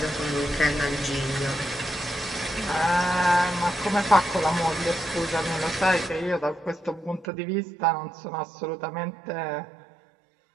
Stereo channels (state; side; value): drops out; left; at 7.2 s